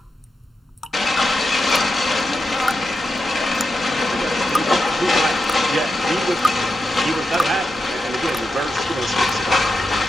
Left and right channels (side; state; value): both; normal; correlation 0.88